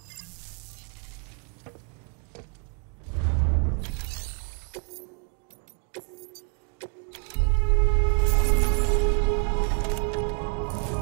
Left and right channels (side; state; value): left; quieter; 37.0 dB